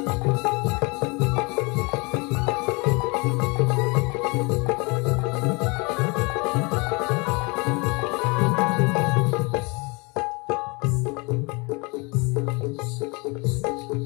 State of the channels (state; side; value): quieter; right; 28.8 dB